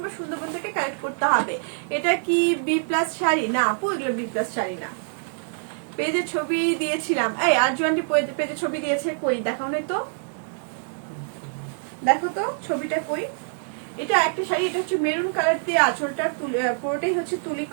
সুন্দরবন থেকে কালেক্ট করতে হবে। এটা কি বি প্লাস শাড়ি? না আপু, এগুলো বি প্লাস শাড়ি না। পেজে ছবি দিয়েছিলাম, এই আরজুয়ানটি পেজে ছবি দিয়েছে, কই দেখাও না তো, দেখো তো ছবিটা কই। এটা একটা শাড়ি, এটা হচ্ছে মেরুন কালার দিয়ে আঁচলটা পুরোটাই হচ্ছে তুলি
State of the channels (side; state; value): left; silent; digital silence